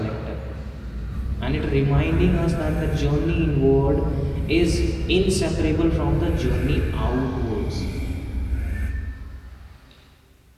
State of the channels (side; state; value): both; identical; correlation 1.00